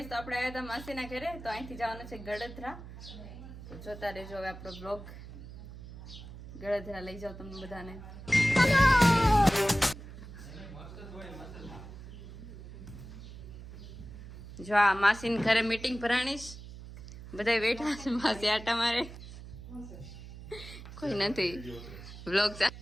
તો આપણે આવ્યા હતા માસીના ઘરે. તો અહીંથી જવાનું છે ગળધરા. તો જોતા રહેજો હવે આપણો બ્લોગ. ગળધરા લઈ જાઓ તમને બધાને. જો આ માસીના ઘરે મીટિંગ ભરાણીશ. બધા બેઠા છે, માસી આટા મારે. કોઈ નથી. બ્લોગ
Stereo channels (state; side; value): noise; right; hum, 14 dB below the sound